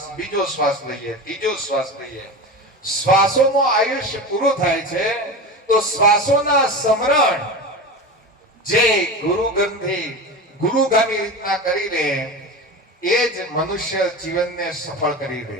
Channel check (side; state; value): both; normal; correlation 0.27